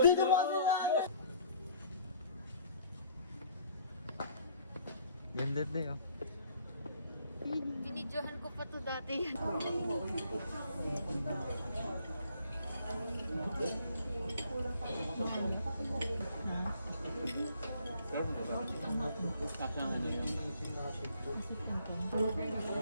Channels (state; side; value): inverted; both; correlation -0.59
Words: mo kasi na! Ganda din, oh. Binidyohan ko pa to dati.